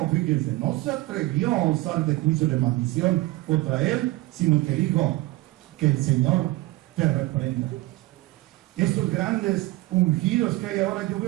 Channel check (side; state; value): left; quieter; 19.2 dB